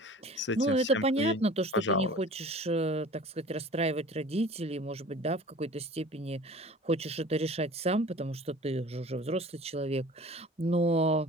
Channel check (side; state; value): both; normal; correlation 0.43